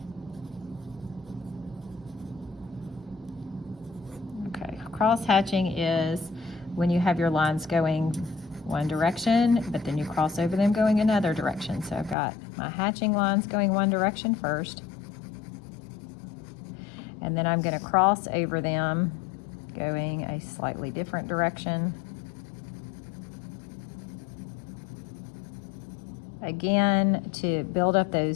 Okay, cross hatching is when you have your lines going one direction, but then you cross over them going another direction. So I've got my hatching lines going one direction first, and then I'm going to cross over them going a slightly different direction. Again, to build up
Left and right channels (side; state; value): right; drops out; at 12.2 s